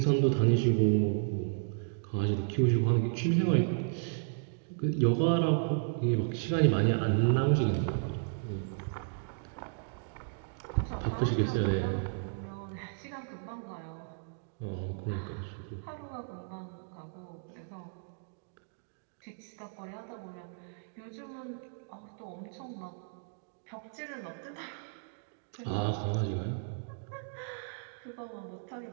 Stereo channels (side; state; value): left; silent; digital silence